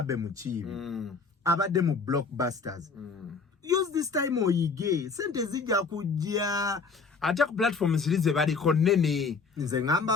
Muchibi. Abademu blockbusters. Use this time oyige. Sente zija kujia. attack platforms zilize bali konene. Nze ngamba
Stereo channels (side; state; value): right; quieter; 4.8 dB